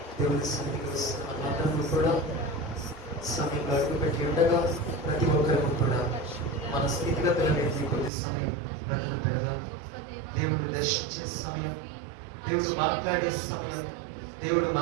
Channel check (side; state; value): left; drops out; at 8.1 s